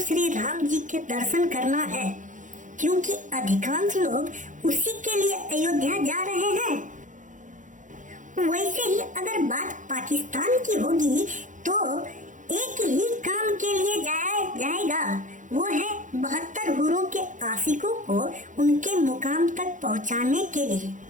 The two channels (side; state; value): left; late; 0.37 ms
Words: राम जी के दर्शन करना है, क्योंकि अधिकांश लोग उसी के लिए अयोध्या जा रहे हैं। वैसे ही अगर बात पाकिस्तान की होगी तो एक ही काम के लिए जाया जाएगा, वो है 72 हुरों के आशिकों को उनके मुकाम तक पहुंचाने के लिए।